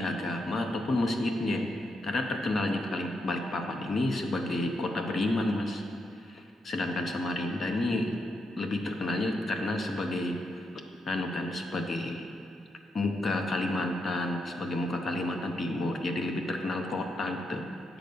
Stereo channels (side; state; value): both; normal; correlation 0.82